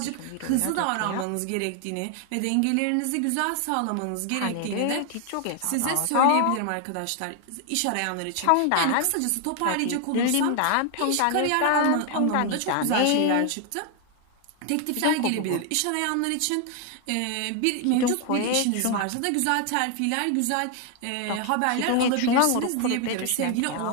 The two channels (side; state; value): both; different; correlation 0.01